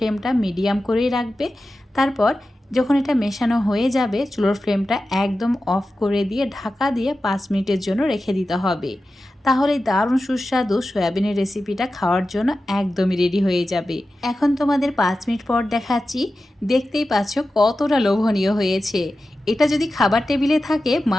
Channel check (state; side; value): normal; both; correlation 0.93